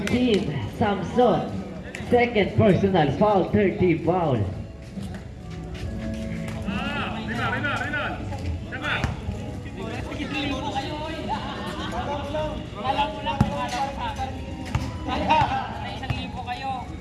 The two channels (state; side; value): identical; both; correlation 1.00